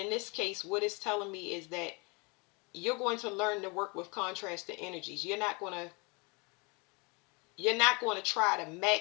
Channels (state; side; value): quieter; right; 29.3 dB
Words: this case, what it's telling me is that you're going to learn to work with contrasting energies. You're not going to try to